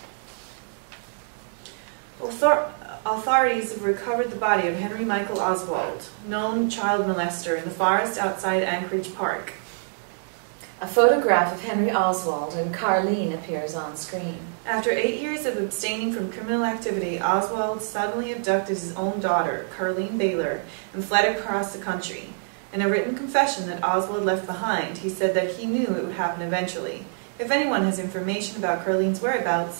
Authorities have recovered the body of Henry Michael Oswald, known child molester, in the forest outside Anchorage Park. A photograph of Henry Oswald and Carlene appears on screen. After 8 years of abstaining from criminal activity, Oswald suddenly abducted his own daughter, Carlene Baylor, and fled across the country. In a written confession that Oswald left behind, he said that he knew it would happen eventually. If anyone has information about Carlene's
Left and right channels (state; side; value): silent; left; digital silence